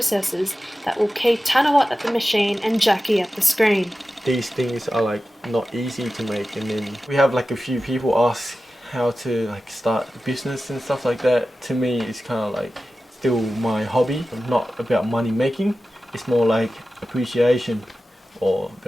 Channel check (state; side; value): normal; both; correlation 0.94